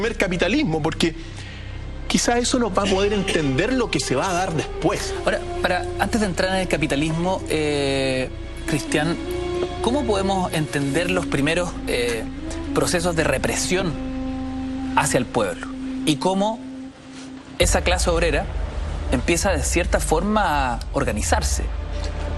capitalismo, porque quizá eso nos va a poder entender lo que se va a dar después. Ahora, antes de entrar en el capitalismo, Cristian, ¿cómo podemos entender los primeros procesos de represión hacia el pueblo? Y cómo esa clase obrera empieza de cierta forma a organizarse.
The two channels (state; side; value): identical; both; correlation 1.00